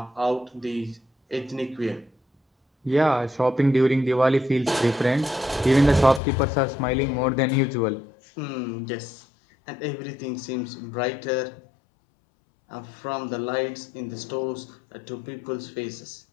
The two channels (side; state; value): right; drops out; at 6.2 s